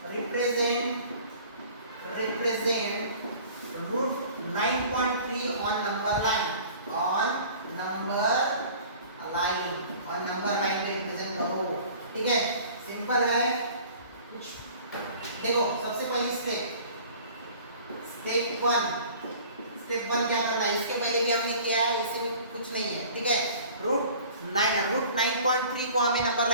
√9.3 on number line पे रिप्रेजेंट करो। ठीक है, सिंपल है। देखो सबसे पहली स्टेप 1 क्या करना है, इसके पहले भी हमने किया है, इसमें कुछ नहीं है। ठीक है, √9.3 को हमें नंबर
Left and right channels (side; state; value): both; inverted; correlation -0.47